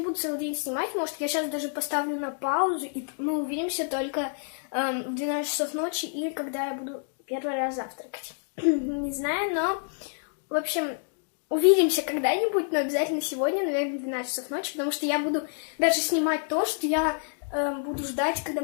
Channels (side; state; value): right; silent; 59 dB below the other